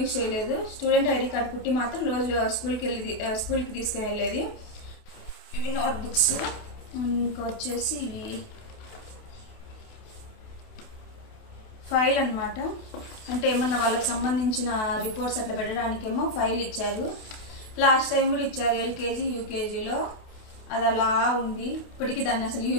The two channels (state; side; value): late; right; 28 ms